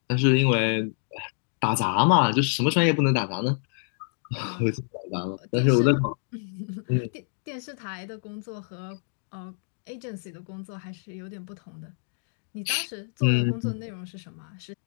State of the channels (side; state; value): right; silent; digital silence